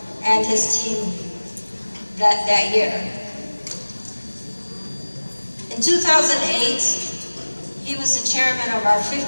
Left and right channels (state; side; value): inverted; both; correlation -1.00